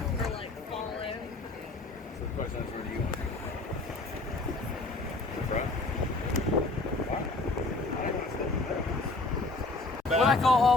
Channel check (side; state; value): right; quieter; 3.3 dB